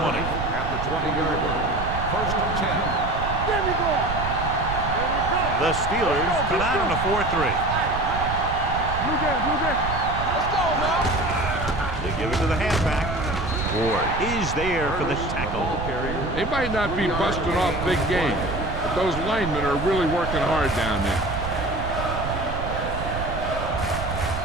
At the 20-yard line. First and 10. The Steelers come out on a 4-3. Let's go, man. They give it to the halfback. Ward is there for the tackle. They might not be busting off big game, but those linemen are really working hard down there.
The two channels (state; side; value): noise; right; rumble, 6 dB below the sound